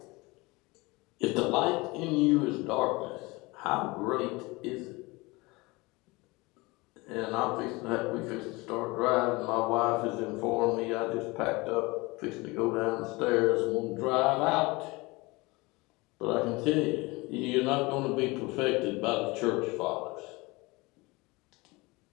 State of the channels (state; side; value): quieter; right; 23.8 dB